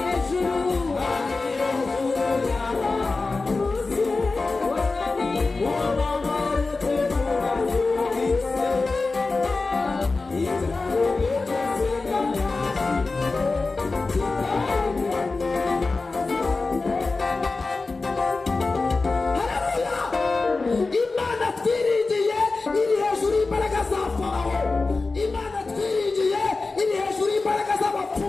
Imana twiringiye iri hejuru y'imbaraga za Farawo. Imana twiringiye iri hejuru y'imbaraga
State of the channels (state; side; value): quieter; right; 3.7 dB